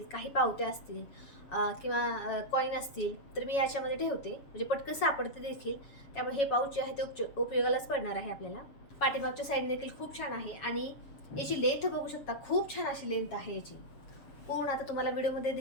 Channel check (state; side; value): late; right; 7.2 ms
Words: काही पावत्या असतील किंवा कॉईन असतील, तर मी याच्यामध्ये ठेवते, म्हणजे पटकन सापडते देखील. त्यामुळे हे पाऊच जे आहे ते उपयोगालाच पडणार आहे आपल्याला. पाठीमागच्या साईडने देखील खूप छान आहे आणि याची लेंथ बघू शकता, खूप छान अशी लेंथ आहे याची. पूर्ण आता तुम्हाला व्हिडिओमध्ये